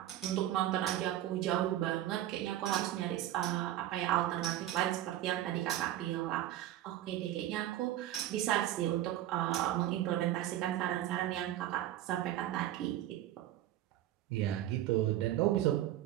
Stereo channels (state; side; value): quieter; left; 13.3 dB